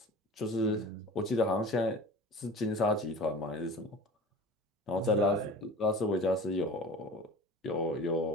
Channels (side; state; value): both; normal; correlation 0.38